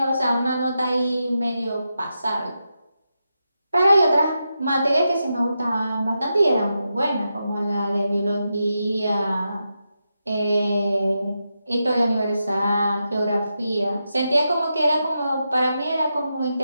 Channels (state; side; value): inverted; both; correlation -0.87